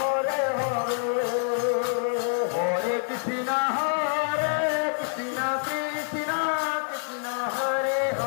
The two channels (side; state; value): right; silent; 61 dB below the other